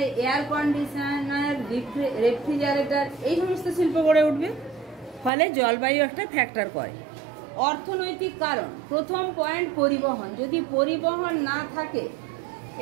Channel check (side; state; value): left; drops out; at 5.3 s